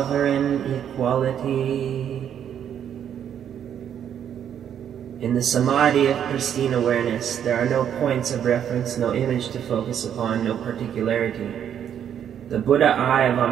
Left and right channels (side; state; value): left; quieter; 9.2 dB